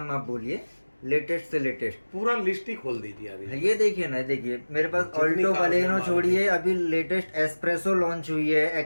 आप बोलिए, लेटेस्ट से लेटेस्ट। पूरा लिस्ट ही खोल दीजिए अभी। ये देखिए ना, देखिए मेरे पास जितनी ऑल्टो कार बलेनो है छोड़िए, अभी लेटेस्ट एस्प्रेसो लॉन्च हुई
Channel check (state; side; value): inverted; both; correlation -1.00